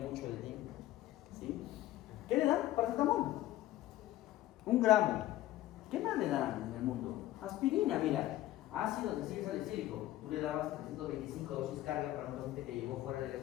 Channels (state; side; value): quieter; right; 14.8 dB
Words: el tiempo. ¿Sí? ¿Qué le dan? Paracetamol. 1 gramo. ¿Qué más le dan en el mundo? Aspirina, mira. Ácido desilsalicílico. Tú le dabas 325 dosis carga para un paciente que llegó fuera del